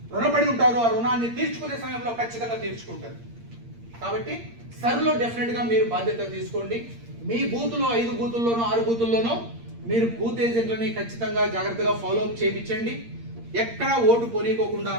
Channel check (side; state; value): left; late; 8.6 ms